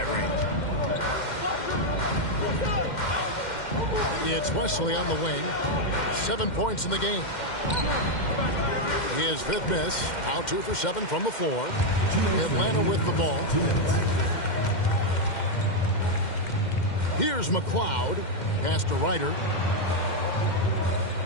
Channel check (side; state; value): right; late; 2.1 ms